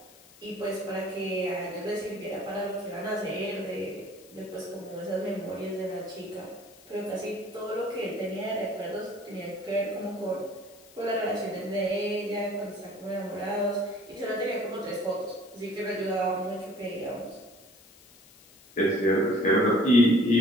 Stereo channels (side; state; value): left; noise; hiss, 24 dB below the sound